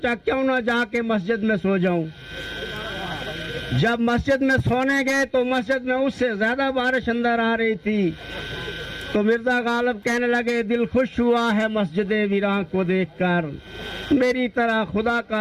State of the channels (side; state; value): both; identical; correlation 1.00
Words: क्यों ना जाके मस्जिद में सो जाऊं। जब मस्जिद में सोने गए तो मस्जिद में उससे ज्यादा बारिश अंदर आ रही थी, तो मिर्जा गालिब कहने लगे दिल खुश हुआ है मस्जिद वीरान को देखकर, मेरी तरह खुदा